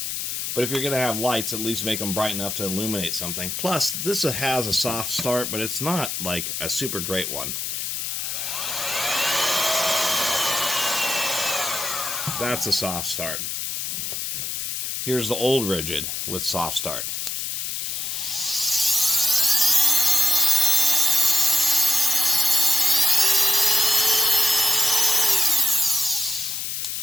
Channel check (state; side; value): noise; left; hiss, 3 dB below the sound